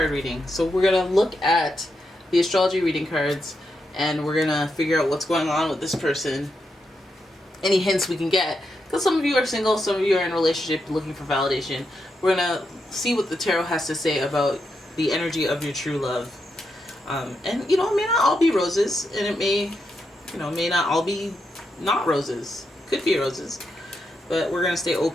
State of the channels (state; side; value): normal; both; correlation 0.84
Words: reading. So we're gonna look at the astrology reading cards, and we're gonna figure out what's going on with this person. Any hints we can get, because some of you are single, some of you are in a relationship looking for validation. We're gonna see what the tarot has to say about the energy of your true love. And it may not all be roses, and it may not all be not roses. Could be roses, but we're gonna stay